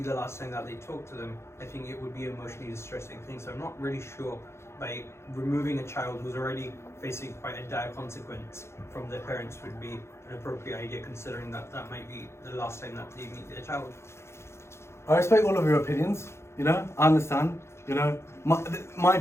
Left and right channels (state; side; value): late; right; 0.13 ms